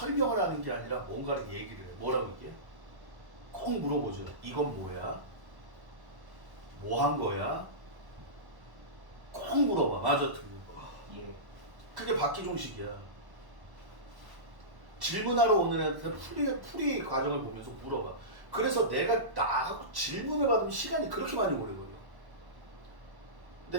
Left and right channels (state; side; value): late; left; 1.1 ms